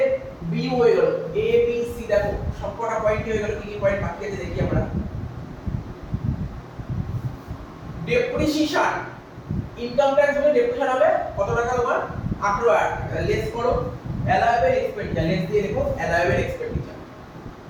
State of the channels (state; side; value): identical; both; correlation 1.00